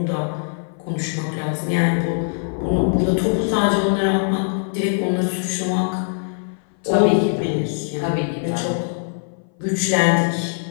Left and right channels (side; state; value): right; silent; 59 dB below the other